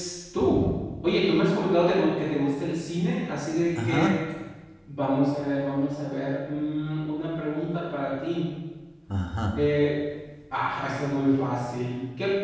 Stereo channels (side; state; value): both; identical; correlation 1.00